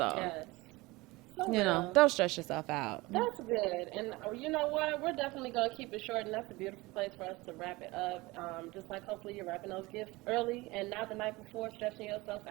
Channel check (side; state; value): left; quieter; 21.9 dB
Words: yes, so real. Don't stress yourself out. That's good. And you know what? We're definitely gonna keep it short, and that's a beautiful place for us to wrap it up. Just like hopefully you're wrapping those gifts early and not the night before, stressing yourself